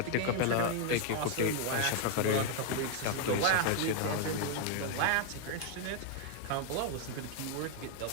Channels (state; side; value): different; both; correlation 0.01